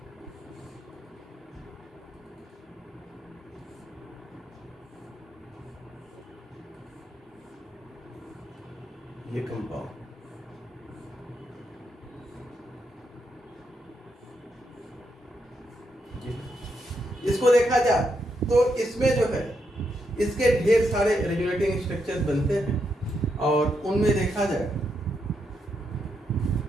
ये कंपाउंड, इसको देखा जाए तो इसमें जो है इसके ढेर सारे रेजोनेटिंग स्ट्रक्चर्स बनते हैं, और उनमें देखा जाए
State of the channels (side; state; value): both; normal; correlation 0.81